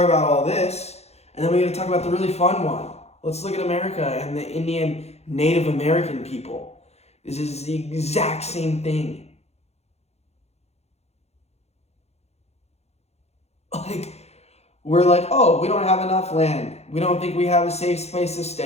about all this, and then we're going to talk about the really fun one. Let's look at America and the Indian Native American people. This is the exact same thing. We're like, oh, we don't have enough land. We don't think we have a safe place to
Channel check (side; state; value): right; late; 0.31 ms